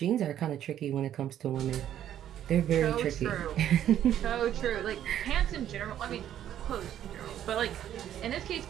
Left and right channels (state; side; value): quieter; left; 11.0 dB